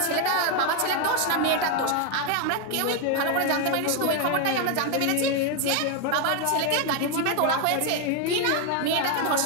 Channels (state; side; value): different; both; correlation 0.01